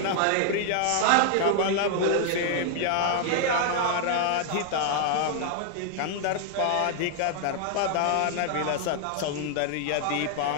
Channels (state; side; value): different; both; correlation 0.00